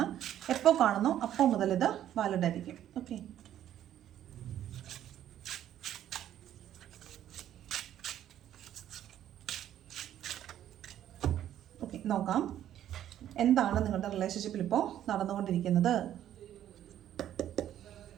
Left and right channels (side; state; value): left; quieter; 11.4 dB